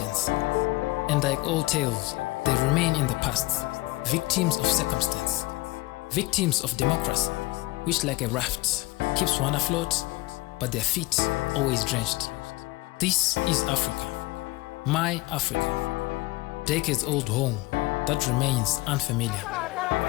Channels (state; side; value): quieter; right; 21.2 dB